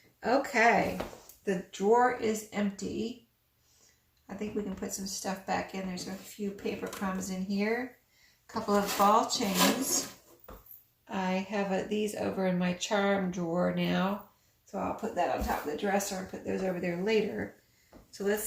Okay, the drawer is empty. I think we can put some stuff back in. There's a few paper crumbs in here. A couple of ball chains. I have these over in my charm drawer now. So I'll put that on top of the dresser and put those over there later. So let's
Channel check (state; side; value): identical; both; correlation 1.00